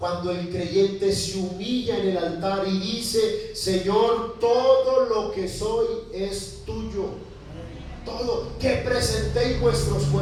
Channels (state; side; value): identical; both; correlation 1.00